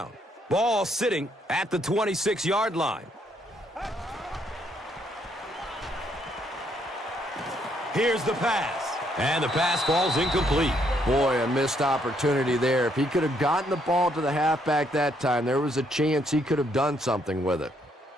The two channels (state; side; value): normal; both; correlation 0.72